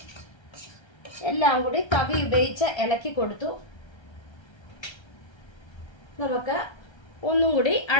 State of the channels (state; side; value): late; right; 1.3 ms